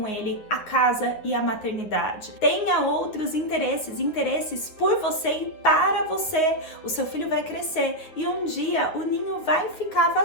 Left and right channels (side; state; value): right; late; 9.7 ms